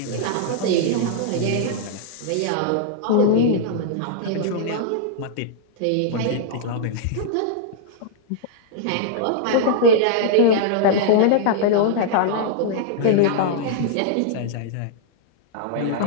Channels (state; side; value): different; both; correlation -0.02